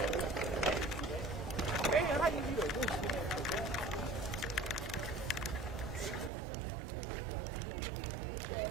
Hey, how you do it?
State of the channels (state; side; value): drops out; left; at 6.3 s